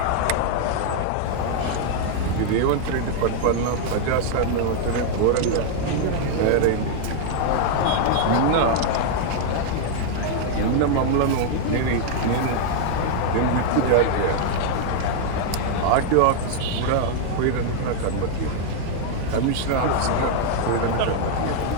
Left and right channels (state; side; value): different; both; correlation 0.00